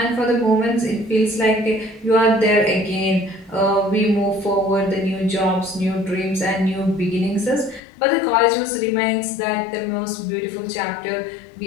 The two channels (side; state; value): right; drops out; at 7.8 s